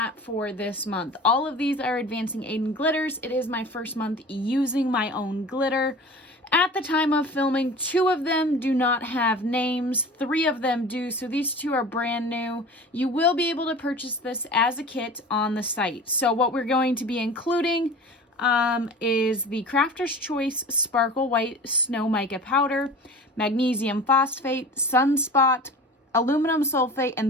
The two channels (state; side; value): normal; both; correlation 0.38